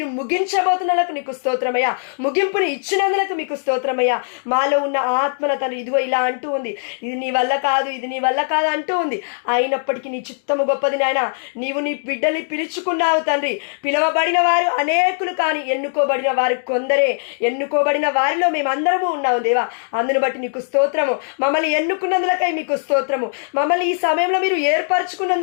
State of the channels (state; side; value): silent; right; digital silence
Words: ముగించబోతున్నందుకు నీకు స్తోత్రమయ్యా. ముగింపుని ఇచ్చినందుకు మీకు స్తోత్రమయ్యా. మాలో ఉన్న ఆత్మన తండ్రి ఇదిగో ఇలా అంటూ ఉంది, ఇది నీ వల్ల కాదు, ఇది నీ వల్ల కాదు అంటూ ఉంది. అయినప్పటికీ నీ చిత్తము గొప్పది నాయన. నీవు నీ బిడ్డల్ని పిలుచుకున్నావు తండ్రి. పిలవబడిన వారు అనేకులు, కానీ ఎన్నుకోబడిన వారు కొందరే. ఎన్నుకోబడిన వారిలో మేమందరము ఉన్నాము దేవా. అందును బట్టి నీకు స్తోత్రము. మమ్మల్ని ఎన్నుకున్నందులకై మీకు స్తోత్రము. మమ్మల్ని ఈ సమయంలో మీరు